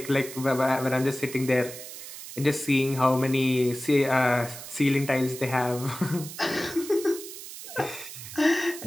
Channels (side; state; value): right; noise; hiss, 12 dB below the sound